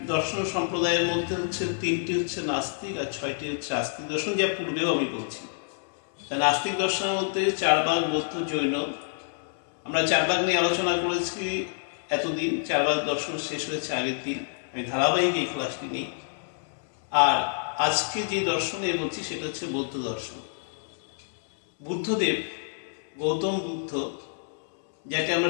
দর্শন সম্প্রদায়ের মধ্যে হচ্ছে ৩টি হচ্ছে নাস্তিক আর ৬টি হচ্ছে আস্তিক দর্শন, যা পূর্বেও আমি বলছি। নাস্তিক দর্শনের মধ্যে ৪ ভাগ বৌদ্ধ, জৈন। আমরা ৪ ভাগ নিয়ে আলোচনা করেছি এতদিন। ৪ ভাগ দর্শন শেষ হয়েছে আগের দিন, আমি ধারাবাহিক এই ক্লাসটি নিই। আর আজকে যে দর্শনে বলছি সেটা হচ্ছে বৌদ্ধ দর্শন। বুদ্ধদেব, গৌতম বুদ্ধ, যাকে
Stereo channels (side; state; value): right; silent; 60 dB below the other